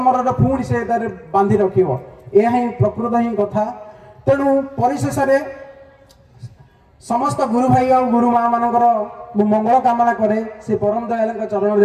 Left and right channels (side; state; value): both; identical; correlation 1.00